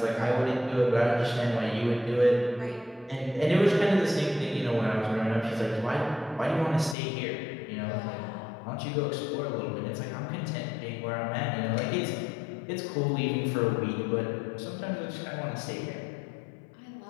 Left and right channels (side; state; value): right; drops out; at 7.0 s